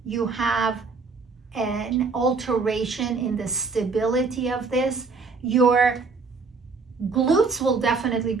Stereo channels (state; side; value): quieter; left; 4.4 dB